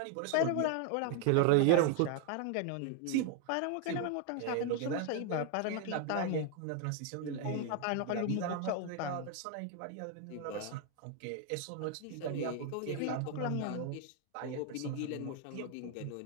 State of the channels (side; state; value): both; different; correlation 0.00